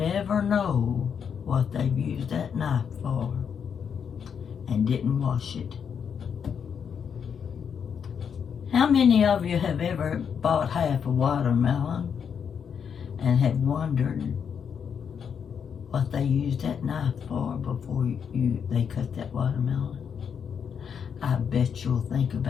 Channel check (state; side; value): quieter; right; 7.2 dB